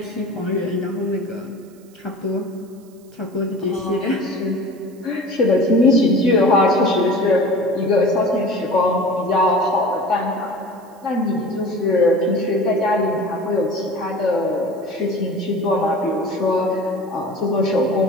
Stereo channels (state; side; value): noise; right; hiss, 30 dB below the sound